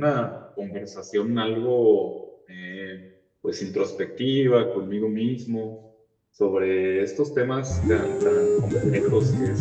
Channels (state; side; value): identical; both; correlation 1.00